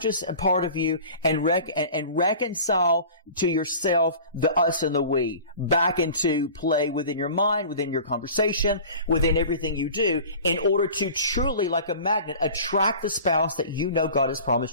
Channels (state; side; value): inverted; both; correlation -0.40